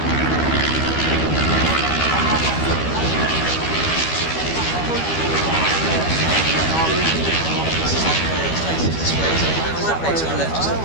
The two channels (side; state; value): right; late; 12 ms